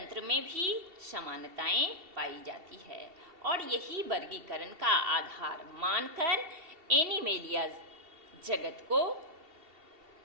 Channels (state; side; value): late; left; 2.7 ms